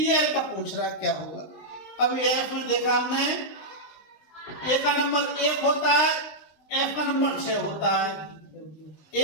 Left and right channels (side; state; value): right; late; 19 ms